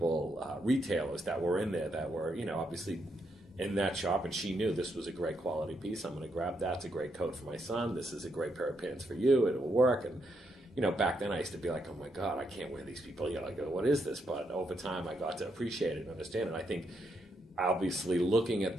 retailers that were in there that were, obviously in that shop, and she knew this was a great quality piece. I'm going to grab that. It's a great coat for my son. This is a great pair of pants for you. It will work. And, back then I used to be like, oh my God, I can't wear these people. I go, what is this? But over time I got to appreciate it and understand it. I think obviously looking at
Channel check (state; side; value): normal; both; correlation 0.79